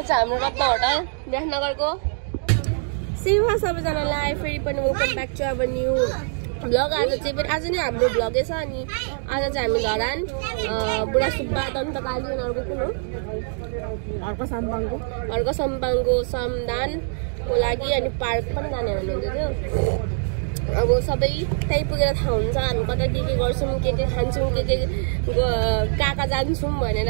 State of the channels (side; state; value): left; silent; 63 dB below the other